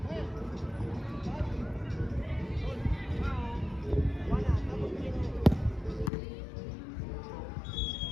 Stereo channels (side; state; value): right; drops out; at 6.1 s